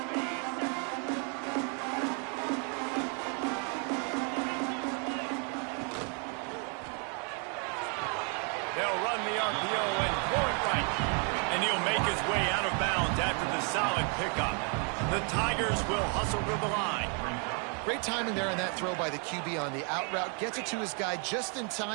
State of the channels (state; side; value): quieter; left; 38.6 dB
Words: They'll run the RPO and throw it right. And he'll make his way out of bounds after the solid pickup. The Tigers will hustle to the line. Great timing there on that throw by the QB on the out route. Gets it to his guy just in